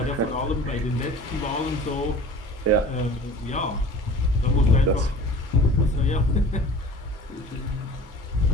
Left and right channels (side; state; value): both; normal; correlation 0.42